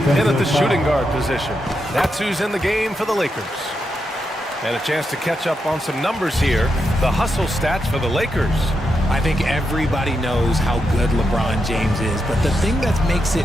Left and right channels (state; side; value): normal; both; correlation 0.85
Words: at the shooting guard position. That's who's in the game for the Lakers. And a chance to catch up on some numbers here. The hustle stats for the Lakers. I think everybody knows how good LeBron James is, but the thing that makes it